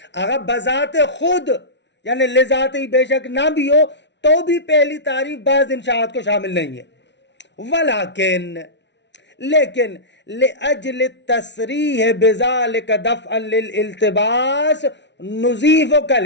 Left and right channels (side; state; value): right; late; 0.51 ms